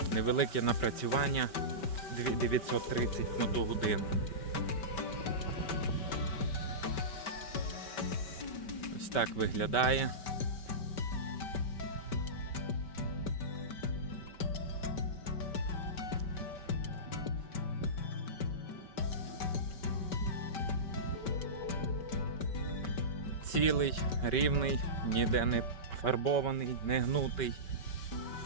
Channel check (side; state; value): right; late; 5.2 ms